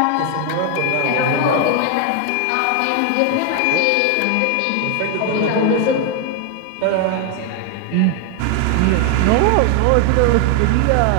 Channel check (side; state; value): both; different; correlation 0.01